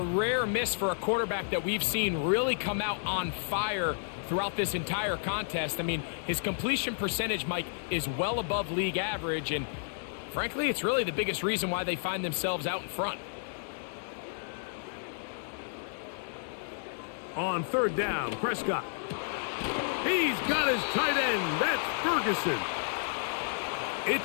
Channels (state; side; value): silent; right; digital silence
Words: rare miss for a quarterback that we've seen really come out on fire throughout this entire contest. I mean, his completion percentage, Mike, is well above league average, and frankly, it's really the biggest reason why they find themselves out in front. On 3rd down, Prescott. He's got his tight end. That's Ferguson.